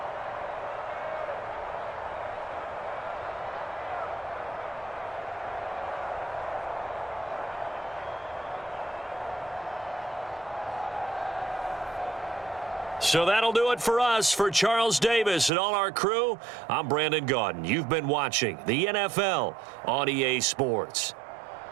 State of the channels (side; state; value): left; drops out; at 15.5 s